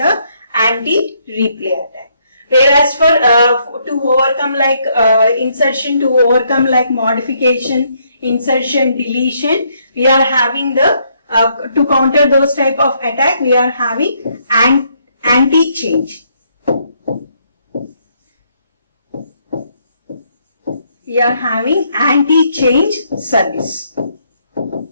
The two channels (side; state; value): both; inverted; correlation -0.72